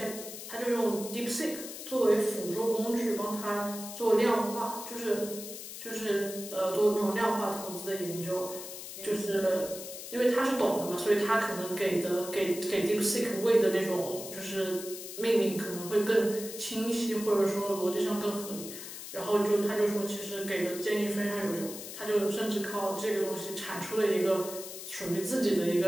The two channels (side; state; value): left; noise; hiss, 10 dB below the sound